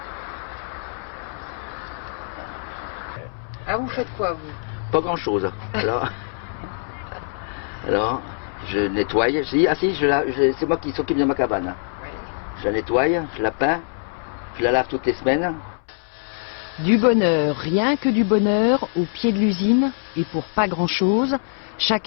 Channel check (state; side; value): silent; right; 63 dB below the other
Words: Ah, vous faites quoi, vous? Pas grand-chose. Alors, je nettoie. C'est moi qui s'occupe de ma cabane. Je la nettoie, je la peins, je la lave toutes les semaines. Du bonheur, rien que du bonheur, au pied de l'usine, et pour pas grand-chose.